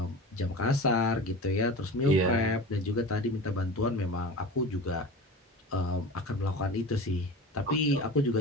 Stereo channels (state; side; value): normal; both; correlation 0.33